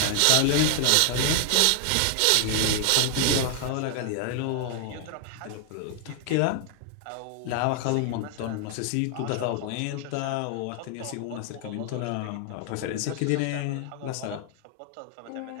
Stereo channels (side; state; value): both; different; correlation 0.00